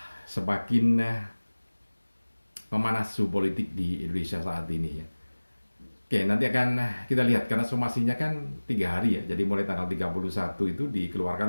semakin memanas suhu politik di Indonesia saat ini ya. Oke, nanti akan kita lihat karena somasinya kan 3 hari ya. Jadi mulai tanggal 31 itu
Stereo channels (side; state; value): both; inverted; correlation -1.00